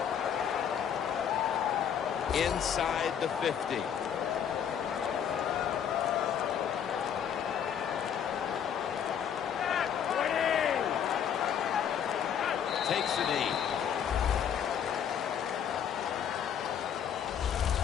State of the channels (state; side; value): quieter; right; 8.5 dB